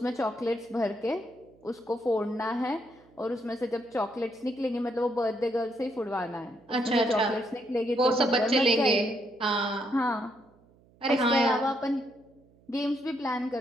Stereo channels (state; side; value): noise; right; hum, 30 dB below the sound